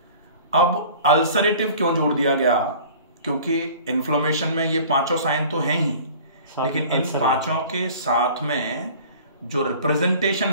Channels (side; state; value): both; inverted; correlation -0.45